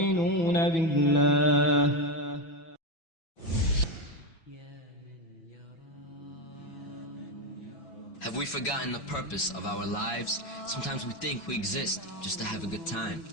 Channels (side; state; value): right; late; 6.0 ms